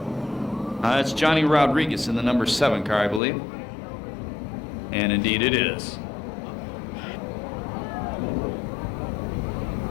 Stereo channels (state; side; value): drops out; right; at 3.2 s